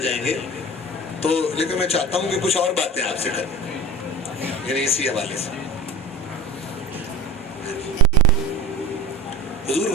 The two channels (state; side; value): normal; both; correlation 0.34